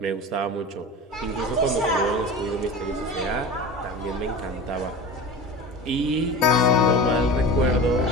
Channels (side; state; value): both; normal; correlation 0.32